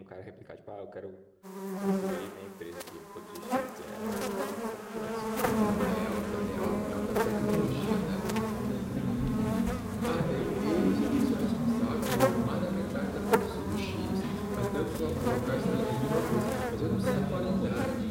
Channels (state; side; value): identical; both; correlation 1.00